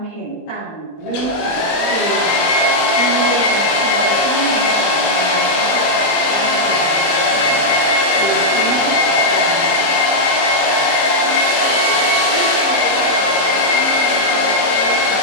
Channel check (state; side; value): late; right; 21 ms